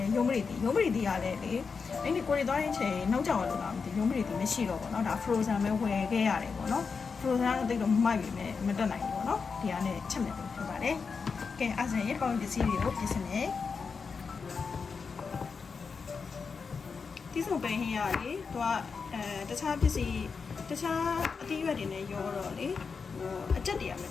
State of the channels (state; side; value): quieter; right; 5.2 dB